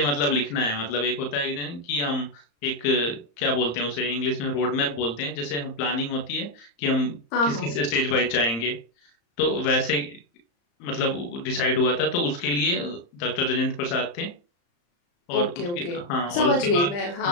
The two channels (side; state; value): right; late; 35 ms